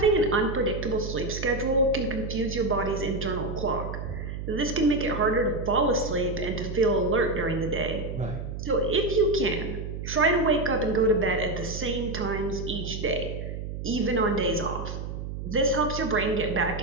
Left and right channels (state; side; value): noise; right; hum, 6 dB below the sound